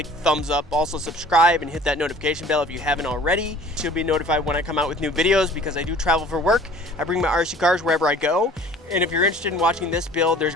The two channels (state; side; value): normal; both; correlation 0.49